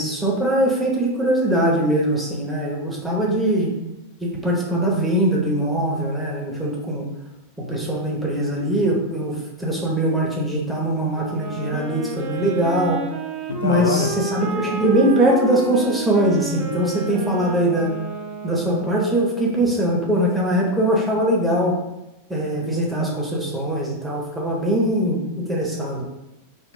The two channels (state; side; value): normal; both; correlation 0.10